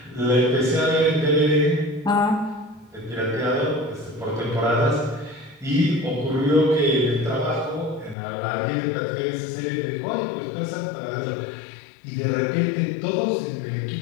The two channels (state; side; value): drops out; right; at 8.2 s